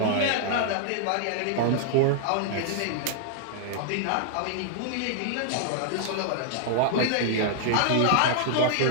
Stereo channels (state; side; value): different; both; correlation -0.01